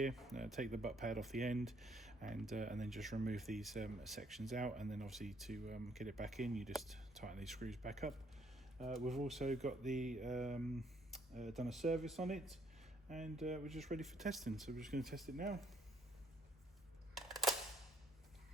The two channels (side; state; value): both; normal; correlation 0.66